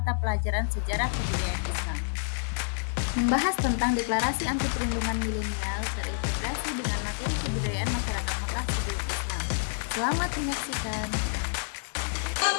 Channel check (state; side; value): silent; right; 59 dB below the other